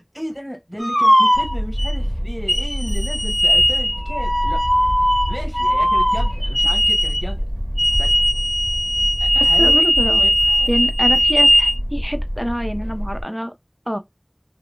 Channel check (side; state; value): both; identical; correlation 1.00